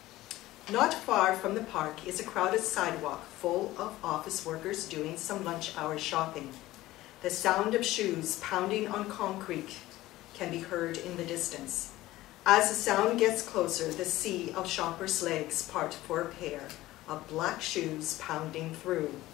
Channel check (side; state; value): right; quieter; 16.7 dB